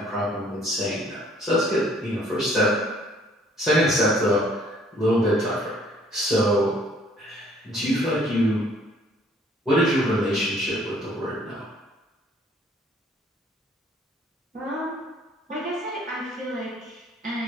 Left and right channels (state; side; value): normal; both; correlation 0.59